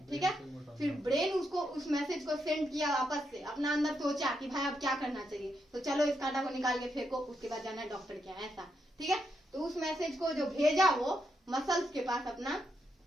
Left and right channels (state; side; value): normal; both; correlation 0.81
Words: ठीक है। फिर ब्रेन उसको उस मैसेज को सेंड किया वापस से, अपना अंदर सोचा कि भाई अब क्या करना चाहिए, तो चलो इस कांटा को निकाल के फेंको, उसके बाद जाना है डॉक्टर के यहाँ, ऐसा, ठीक है। तो उस मैसेज को जो भेजा वो मसल्स के पास अपना,